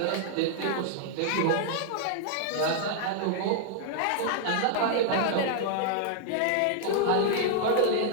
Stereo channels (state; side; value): different; both; correlation -0.01